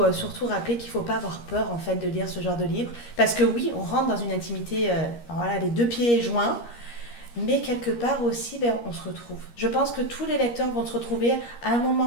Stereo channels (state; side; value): late; right; 13 ms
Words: surtout rappeler qu'il ne faut pas avoir peur en fait de lire ce genre de livre. Parce que oui, on rentre dans une intimité, les 2 pieds joints, mais quelque part aussi, on se retrouve. Je pense que tous les lecteurs vont se retrouver à un